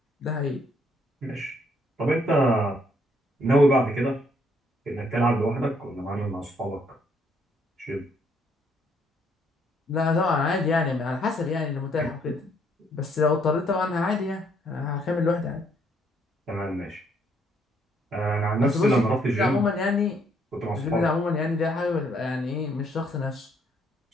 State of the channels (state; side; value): normal; both; correlation 0.69